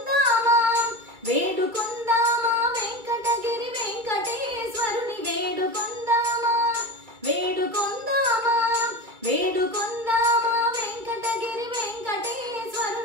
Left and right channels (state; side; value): late; left; 2.3 ms